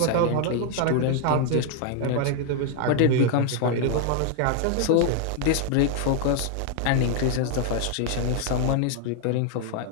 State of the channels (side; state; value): both; different; correlation 0.00